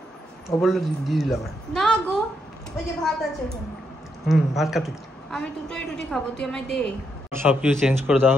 ও বললো দিয়ে দিলাম। না গো, ওই যে ভাত আছে ওখানে। ভাত খাবি? আমি দুটোই রুটি খাবো, তুই আমায় দে। সব কিছু চেঞ্জ করে দেওয়া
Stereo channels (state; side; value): normal; both; correlation 0.79